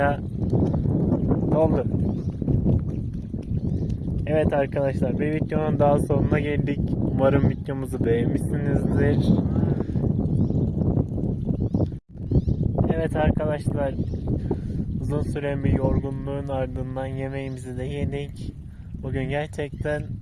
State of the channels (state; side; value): identical; both; correlation 1.00